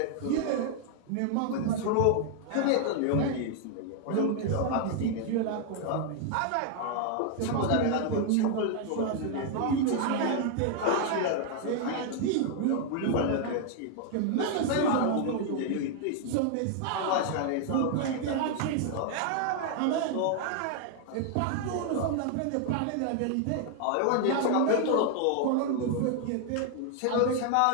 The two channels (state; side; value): different; both; correlation 0.00